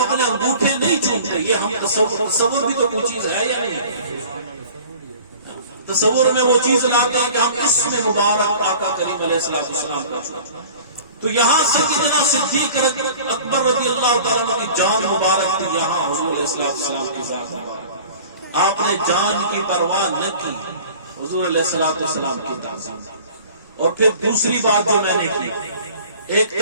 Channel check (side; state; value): both; inverted; correlation -0.45